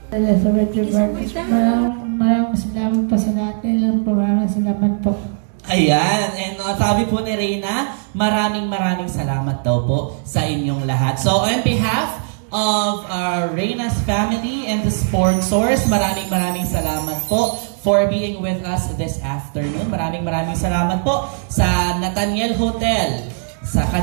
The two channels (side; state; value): left; silent; digital silence